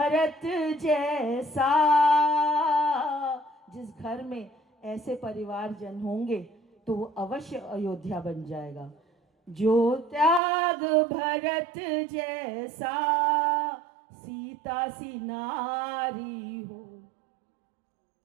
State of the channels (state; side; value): drops out; left; at 10.4 s